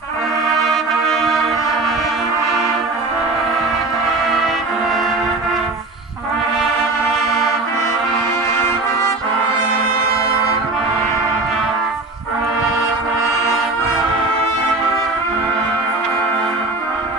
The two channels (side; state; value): left; quieter; 3.3 dB